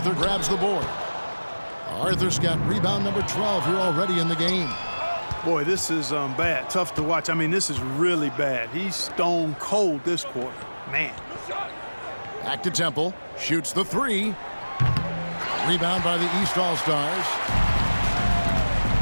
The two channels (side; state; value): both; inverted; correlation -1.00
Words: grabs the board. Arthur's got rebound number 12 here already in the game. Boy, this is bad. Tough to watch. I mean, this is really bad. He's stone cold this quarter. Man. Back to Temple. Shoots the 3. Rebound by the East All-Stars.